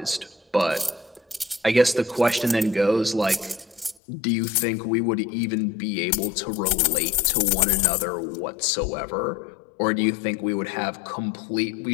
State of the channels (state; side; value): drops out; right; at 4.0 s